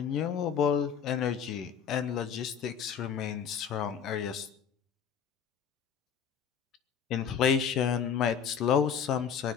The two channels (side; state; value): right; quieter; 7.6 dB